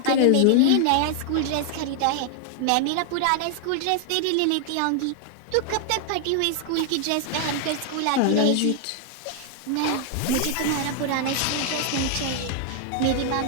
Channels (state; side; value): different; both; correlation 0.00